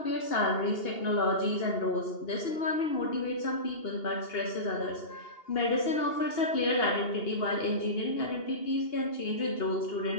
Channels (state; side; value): late; right; 2.8 ms